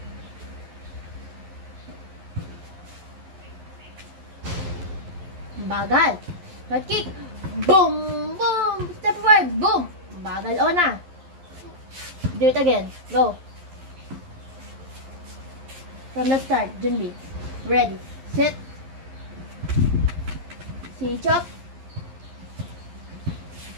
Bagal. Right kick. Boom, boom. Step forward. Boom. Bagal. O na. Do it again. Go. From the start. Junbi. Ready. Set. 시작.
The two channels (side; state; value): left; late; 11 ms